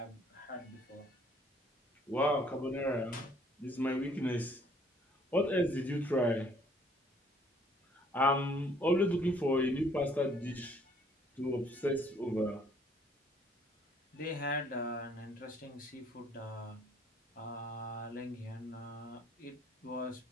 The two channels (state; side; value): normal; both; correlation 0.61